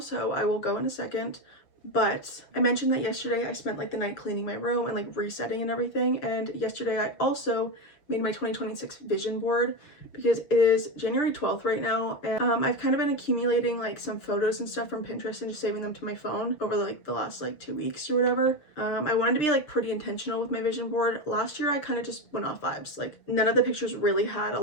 I will go in a second. But I mentioned that yesterday I spent like the night cleaning my room and like resetting and everything. And yesterday I also made my 2026 vision board because it is January 12th right now, and I've kind of been accumulating like some photos and stuff from Pinterest and just saving them to my phone over like the last like 2 weeks or whatever. I wanted to be like pretty intentional with my vision board. Last year I kind of just went off vibes. Like none of the pictures really had a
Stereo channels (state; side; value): late; right; 6.8 ms